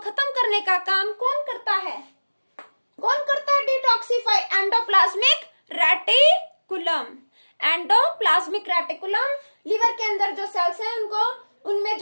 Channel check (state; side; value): inverted; both; correlation -1.00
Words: करने का काम कौन करता है, कौन करता है, detoxify, endoplasmic reticulum. Endoplasmic reticulum liver के अंदर जो सेल्स हैं उनको, उनमें